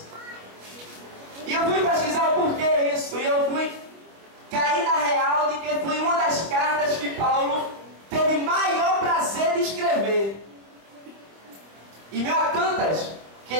E eu fui pesquisar o porquê isso, e eu fui cair na real de que foi uma das cartas que Paulo teve maior prazer de escrever. E meio a tantas que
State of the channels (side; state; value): left; late; 25 ms